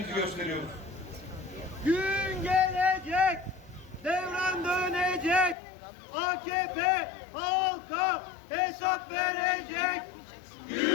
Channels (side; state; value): right; drops out; at 5.6 s